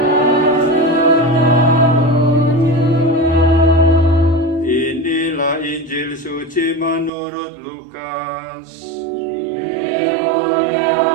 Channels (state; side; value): drops out; left; at 7.1 s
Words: Inilah Injil suci menurut Lukas.